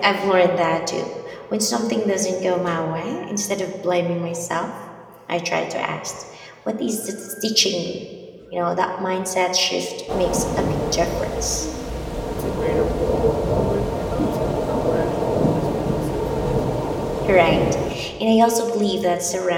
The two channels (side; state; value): both; identical; correlation 1.00